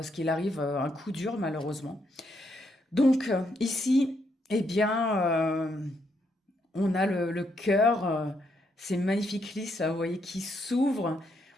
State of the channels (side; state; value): both; normal; correlation 0.76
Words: qu'il arrive un coup dur, malheureusement. Donc, ici, eh bien, on a le cœur, ces magnifiques lisses, là, vous voyez, qui s'ouvrent.